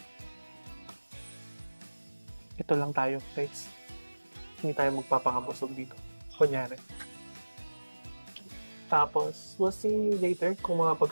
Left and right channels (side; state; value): both; inverted; correlation -1.00